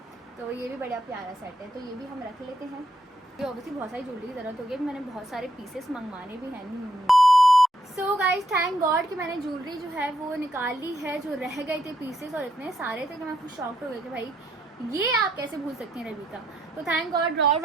तो ये भी बड़ा प्यारा सेट है, तो ये भी हम रख लेते हैं। ये ऑब्वियसली बहुत सारी ज्वेलरी की ज़रूरत होगी, मैंने बहुत सारे पीसेस मंगवाने भी हैं। सो गाइज थैंक गॉड कि मैंने ज्वेलरी जो है वो निकाल ली है, जो रह गए थे पीसेस और इतने सारे थे कि मैं खुद शॉक्ड हो गई कि भाई ये आप कैसे भूल सकती हैं रविका। तो थैंक गॉड ड्रॉर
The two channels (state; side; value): normal; both; correlation 0.75